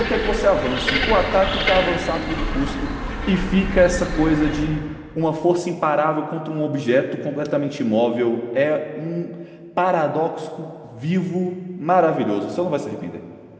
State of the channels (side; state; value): both; identical; correlation 1.00